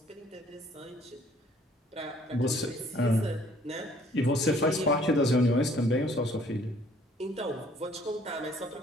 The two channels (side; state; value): both; normal; correlation 0.59